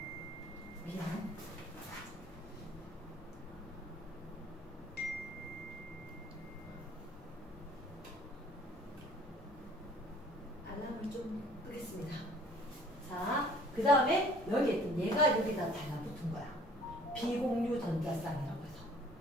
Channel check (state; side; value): normal; both; correlation 0.53